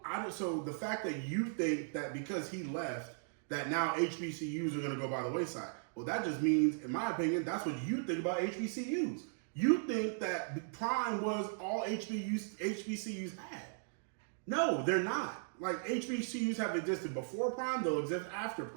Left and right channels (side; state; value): left; silent; digital silence